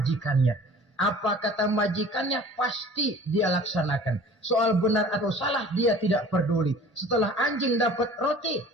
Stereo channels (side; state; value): both; normal; correlation 0.46